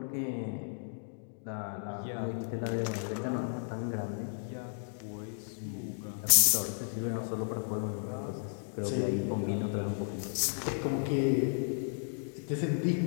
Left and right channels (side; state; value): right; silent; digital silence